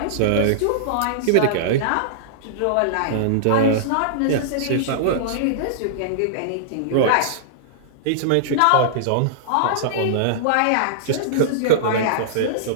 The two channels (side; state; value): both; different; correlation -0.02